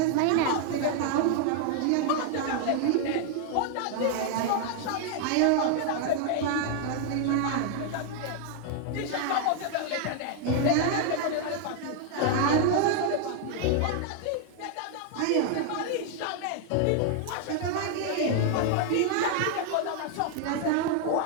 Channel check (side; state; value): both; different; correlation 0.00